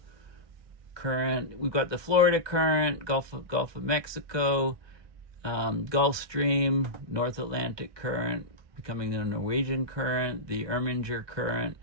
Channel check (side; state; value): left; late; 1.2 ms